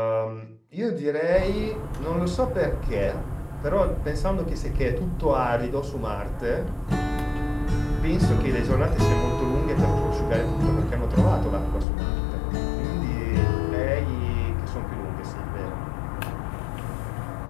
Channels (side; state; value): right; drops out; at 11.9 s